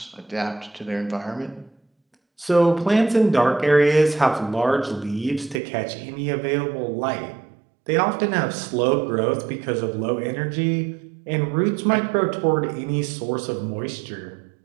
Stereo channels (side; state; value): left; drops out; at 5.6 s